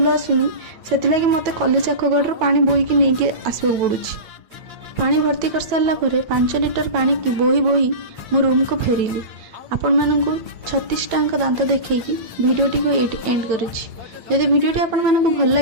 आसुनी से मत कॉलेज आखगढ़ पानी बोईकी नहीं आसवाक पड़ुछि। पानी भर्ती कर सारा 5 लिटर पानी की बोही बोही मो रूम को फेरिली। आपण मानकु 36 टांक दांत देखैकी वीडियोटी को एंड करुछि। यदि वीडियोटी आपण मानकु भल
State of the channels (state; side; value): late; left; 8.6 ms